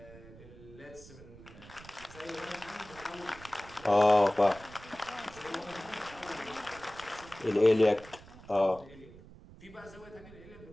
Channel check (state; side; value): noise; right; rumble, 19 dB below the sound